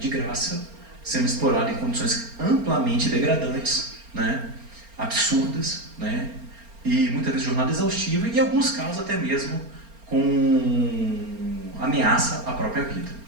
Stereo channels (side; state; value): left; late; 4.3 ms